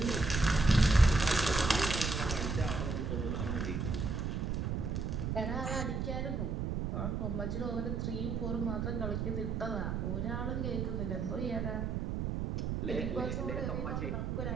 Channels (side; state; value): right; noise; rumble, 1 dB below the sound